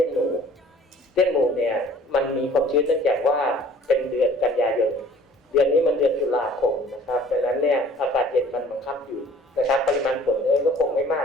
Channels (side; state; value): both; normal; correlation 0.51